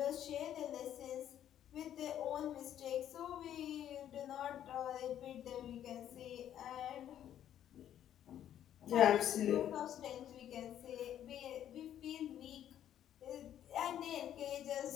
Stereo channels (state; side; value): quieter; right; 10.8 dB